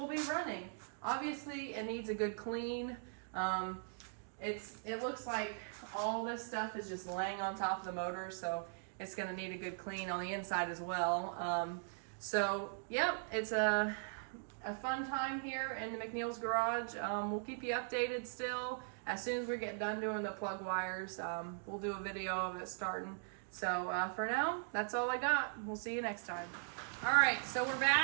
be running. Obviously it needs a good clean. It looks like all this stuff is just laying on top of the motor, so it's going to need a good clean on the inside as well. So, yep, it's a fun time here in the McNeil's Garage. We'll keep you updated still. As soon as we get done doing the plug wires, we'll do a video of it starting. So, for now, that's all I got. We'll see you next time. All right, so we're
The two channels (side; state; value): left; silent; digital silence